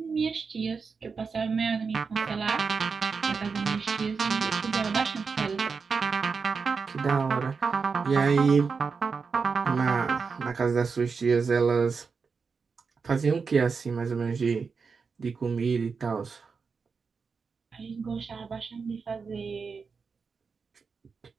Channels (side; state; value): left; quieter; 5.2 dB